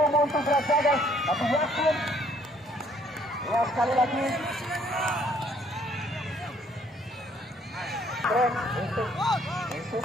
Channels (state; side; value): normal; both; correlation 0.63